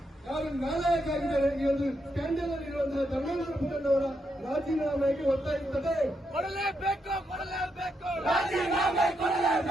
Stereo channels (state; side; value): normal; both; correlation 0.81